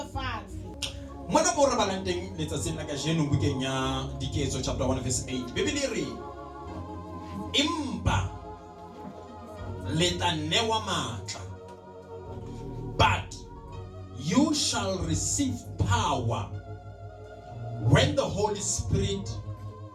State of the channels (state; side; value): identical; both; correlation 1.00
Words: Mona mo re balang teng letsatsing la kajeno bukeng ya Diketso chapter 1 verse 8. Bibele re empa le tla newa matla, but you shall receive power when the Holy Spirit